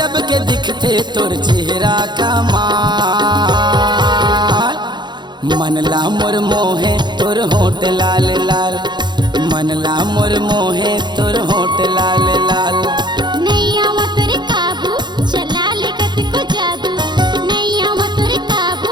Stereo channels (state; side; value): late; left; 0.21 ms